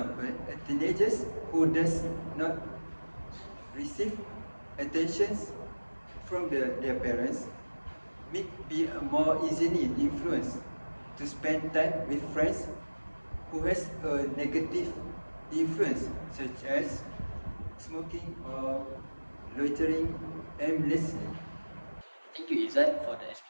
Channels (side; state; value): both; inverted; correlation -1.00